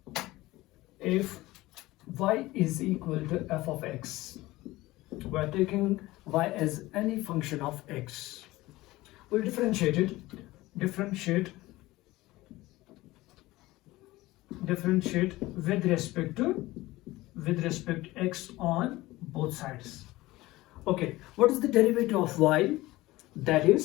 If y is equal to f of x, we are taking y as any function of x. We'll differentiate with respect to x on both sides. Okay, what is the derivative of y? That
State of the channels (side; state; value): right; quieter; 18.6 dB